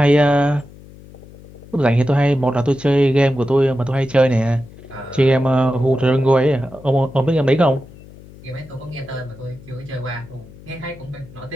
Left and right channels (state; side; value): noise; left; hum, 20 dB below the sound